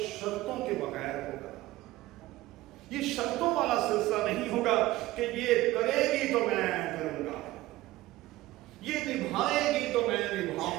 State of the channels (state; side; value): quieter; left; 17.3 dB